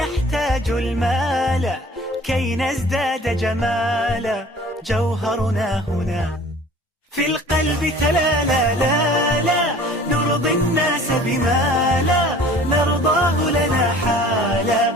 المال كي نزداد جمالا، جوهرنا هنا في القلب تلالا. لا لا نرضي الناس بما لا نرضاه لنا حالا،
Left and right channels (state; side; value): normal; both; correlation 0.47